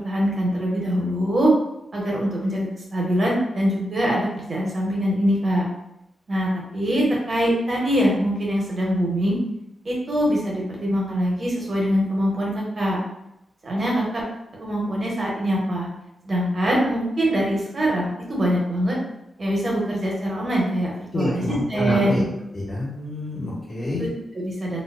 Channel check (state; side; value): normal; both; correlation 0.85